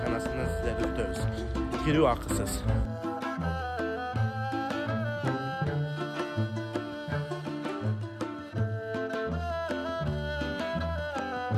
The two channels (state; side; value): identical; both; correlation 1.00